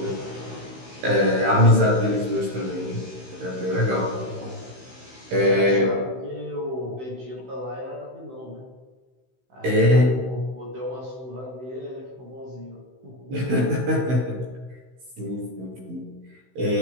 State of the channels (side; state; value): left; late; 16 ms